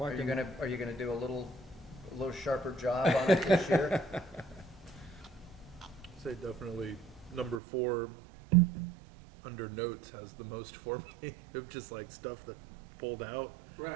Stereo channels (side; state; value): left; drops out; at 7.6 s